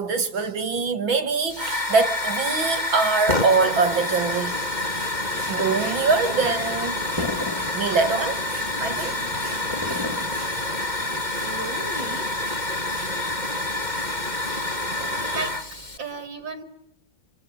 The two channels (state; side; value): late; left; 2.1 ms